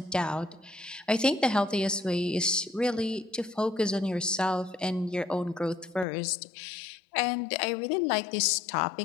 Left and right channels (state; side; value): drops out; right; at 6.1 s